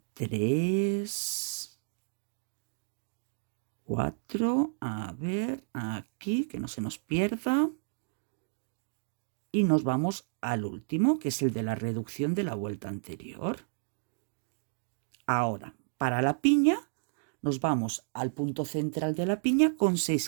3, 4, a ver, aquí, que no se nos pierda. Y nos vamos al último, que es el de la reducción de la vuelta anterior. Ahora, para la piña, nos vamos al punto central de la piña con 6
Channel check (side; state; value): left; silent; digital silence